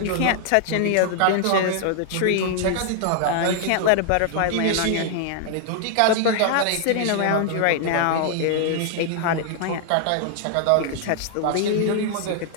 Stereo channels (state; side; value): different; both; correlation 0.00